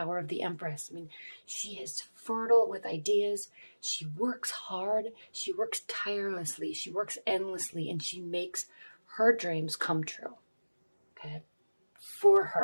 of the Empress. I mean, she is fertile with ideas. She works hard. She works tirelessly. She works endlessly, and she makes her dreams come true. Okay? For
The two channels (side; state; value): both; inverted; correlation -1.00